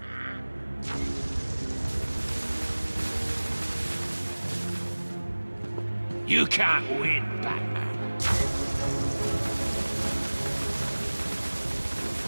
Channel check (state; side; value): inverted; both; correlation -1.00